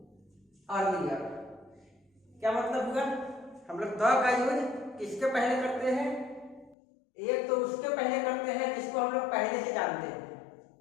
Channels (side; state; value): right; drops out; at 6.8 s